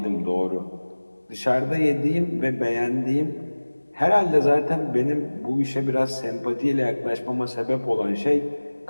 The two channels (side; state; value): both; inverted; correlation -1.00